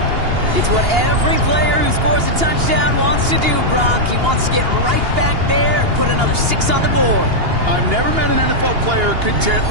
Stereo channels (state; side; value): late; left; 2.8 ms